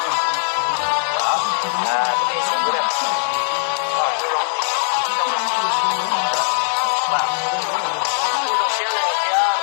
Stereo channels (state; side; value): silent; right; 66 dB below the other